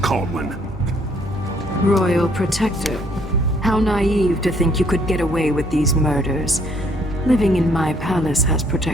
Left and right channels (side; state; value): both; normal; correlation 0.65